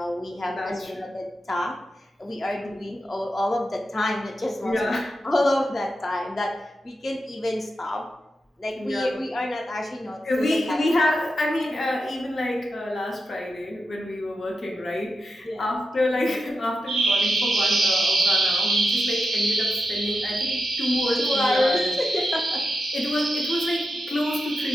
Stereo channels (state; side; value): normal; both; correlation 0.88